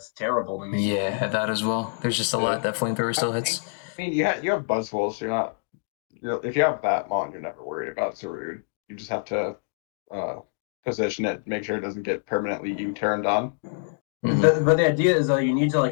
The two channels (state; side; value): silent; right; digital silence